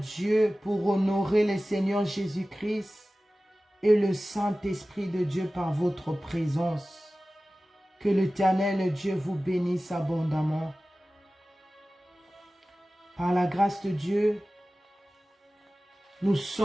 pour honorer le Seigneur Jésus-Christ et le Saint-Esprit de Dieu par votre présence. Que l'Éternel Dieu vous bénisse abondamment. Par la grâce de Dieu, nous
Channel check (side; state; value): both; normal; correlation 0.96